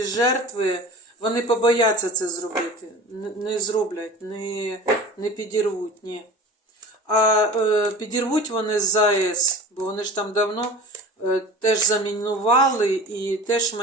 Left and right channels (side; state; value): both; normal; correlation 0.38